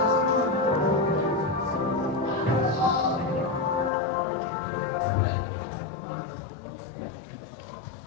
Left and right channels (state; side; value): drops out; right; at 3.9 s